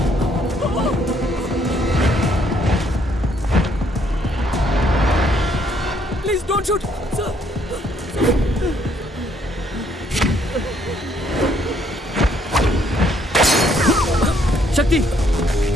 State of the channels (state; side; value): normal; both; correlation 0.68